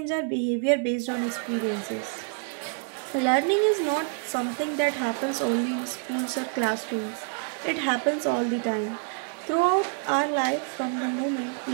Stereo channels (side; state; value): left; quieter; 39.3 dB